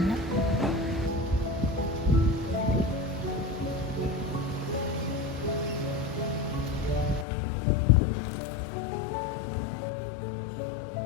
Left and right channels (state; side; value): drops out; right; at 7.2 s